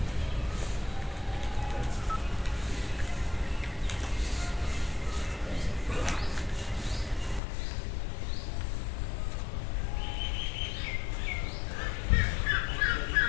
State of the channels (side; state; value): right; drops out; at 7.4 s